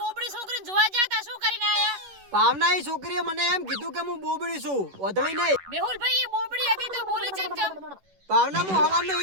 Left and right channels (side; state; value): left; late; 11 ms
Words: બોબડી છોકરીને જોવા જાતા શું કરીને આયા? ભાવના એ છોકરીએ મને એમ કીધું કે હું બોબડી છું, ઓધળી નહીં. મેહુલભાઈ એ બોબડી હતી તો બોલી ચમ. ભાવના હું હવાનો